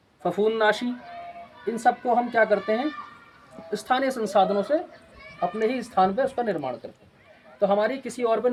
फफूंदनाशी, इन सब को हम क्या करते हैं, स्थानीय संसाधनों से अपने ही स्थान पे उसका निर्माण करते हैं। तो हमारी किसी और पर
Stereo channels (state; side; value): identical; both; correlation 1.00